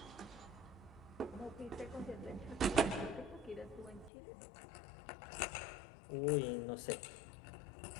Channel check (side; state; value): right; drops out; at 4.1 s